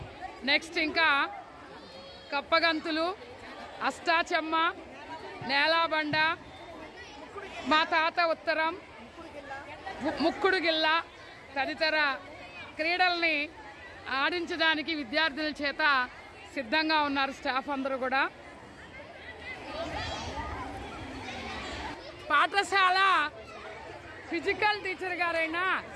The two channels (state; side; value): identical; both; correlation 1.00